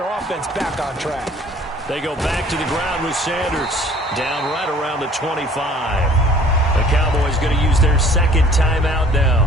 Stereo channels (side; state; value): both; normal; correlation 0.53